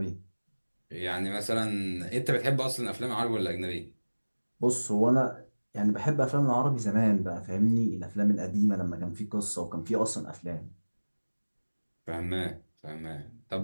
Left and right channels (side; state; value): both; inverted; correlation -1.00